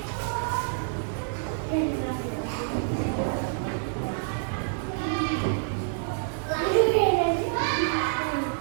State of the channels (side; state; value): left; silent; 57 dB below the other